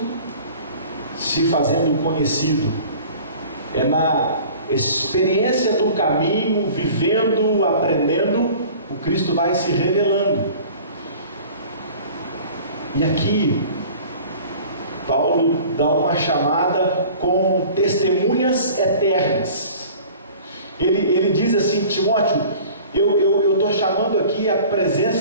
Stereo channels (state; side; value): inverted; both; correlation -0.45